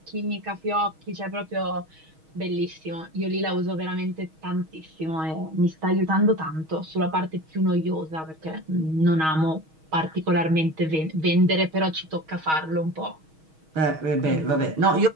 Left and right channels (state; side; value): late; left; 6.3 ms